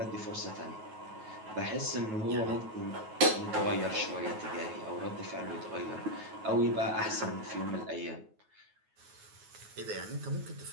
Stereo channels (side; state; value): left; late; 9.3 ms